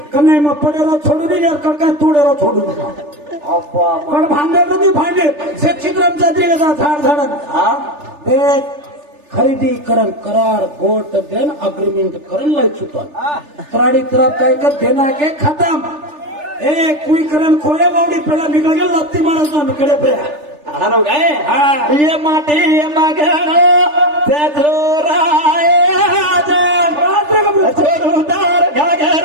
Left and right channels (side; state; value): left; late; 3.4 ms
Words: कन्ने म पडेरो छोडू दी यार कणकाय तोडेरो छोडू अप्पा पण भांडे नदी भांडे से चित्रम चादरी का झाड झाडन हां ते खरेदी करन करार गोट देन अग्रीमेंट करन लय चुकन त्राडी तरफ काय का देना के खत्म ए कोई करन खोया बावडी पेला निकल गेल लत्ती मारतो कडे पे हारो काय हां ये माटी ये मगनो तेजो राय आजा छोरुदार